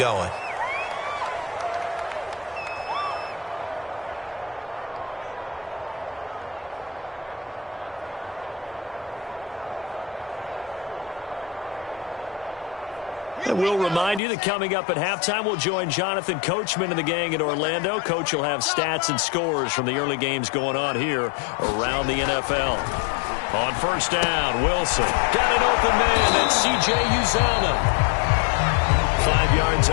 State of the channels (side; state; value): right; drops out; at 14.2 s